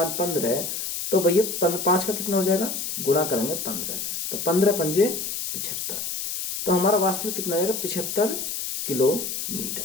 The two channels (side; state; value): left; noise; hiss, 4 dB below the sound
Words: 15 है तो भैया 5 का कितना हो जाएगा, गुणा करेंगे 15 से, तो 15 पंजे 75, तो हमारा वास्तविक कितना हो जाएगा, 75